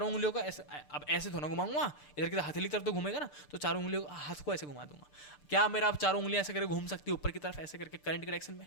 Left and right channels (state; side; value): late; right; 6.7 ms